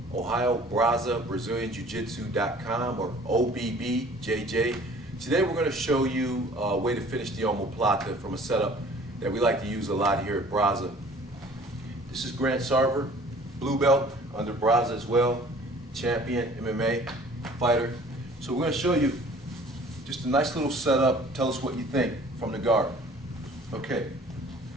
Ohio Brasa Brazilian Jiu-Jitsu.com or OBBJJ. Today we're going to show you a way to finish the Omoplata from a setup that we like to use a lot here at Brasa. This is Grant Sarver, blue belt under Brasa as well, champion MMA fighter. So we're going to show you just a nice little setup. Tell us what you think from the guard. Okay,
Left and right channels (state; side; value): normal; both; correlation 0.51